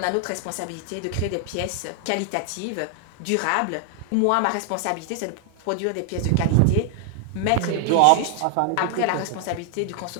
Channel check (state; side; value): different; both; correlation 0.00